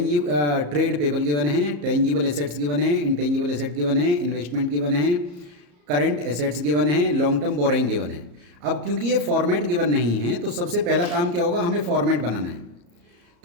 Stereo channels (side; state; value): left; late; 34 ms